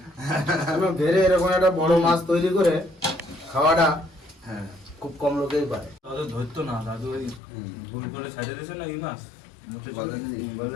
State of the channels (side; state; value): right; drops out; at 7.4 s